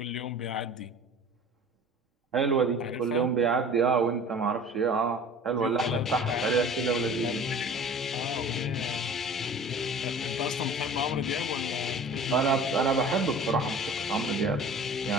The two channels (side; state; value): both; normal; correlation 0.43